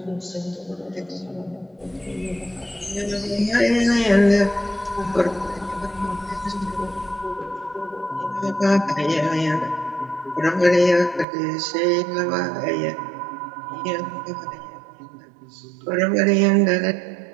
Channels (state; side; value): drops out; left; at 11.2 s